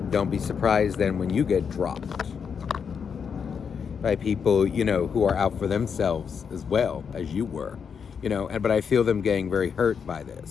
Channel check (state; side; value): quieter; right; 6.6 dB